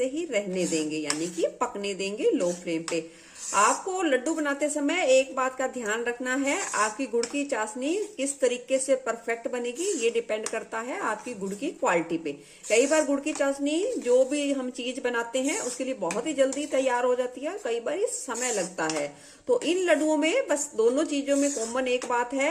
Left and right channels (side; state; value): both; identical; correlation 1.00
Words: ही रहने देंगे, यानी कि पकने देंगे लो फ्लेम पे। आपको लड्डू बनाते समय एक बात का ध्यान रखना है, आपकी गुड़ की चाशनी किस तरीके से परफेक्ट बनेगी ये डिपेंड करता है आपकी गुड़ की क्वालिटी पे। कई बार गुड़ की चाशनी जो भी हम चीज बनाते हैं उसके लिए बहुत ही जल्दी तैयार हो जाती है, कई बार समय लगता है। तो इन लड्डुओं में बस दोनों चीजों में कॉमन एक बात